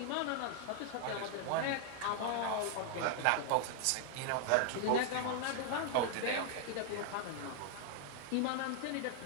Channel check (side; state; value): both; different; correlation 0.00